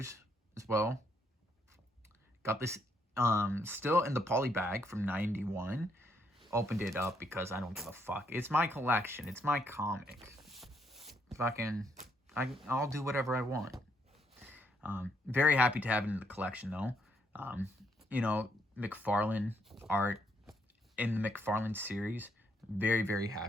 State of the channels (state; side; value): normal; both; correlation 0.73